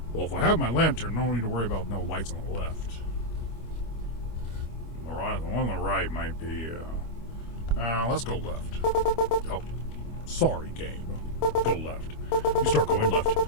Well, if I have my lantern, no need to worry about no lights on the left. The one on the right might be, let's go left. Oh, sorry, game. Go left. You start going left.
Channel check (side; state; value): right; late; 25 ms